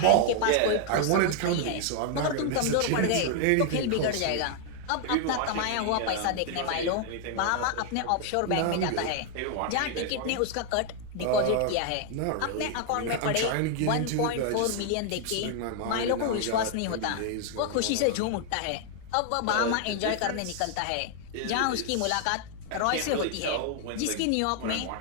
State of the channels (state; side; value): different; both; correlation 0.00